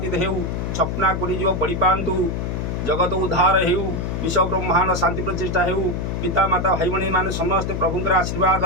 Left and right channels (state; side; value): noise; left; hum, 2 dB below the sound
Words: हेउ छपना कोटी जीव पड़ी पांतु जगत उद्धार हेउ विश्व ब्रह्मांड शांति प्रतिष्ठा हेउ पिता माता भाई भणी मान समस्त प्रभुंकर आशीर्वाद